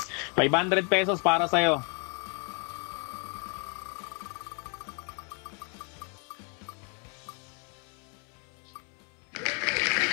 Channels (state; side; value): quieter; right; 35.2 dB